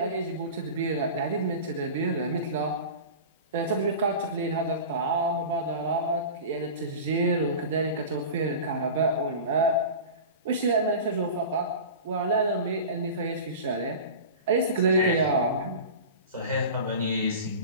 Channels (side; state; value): both; inverted; correlation -0.33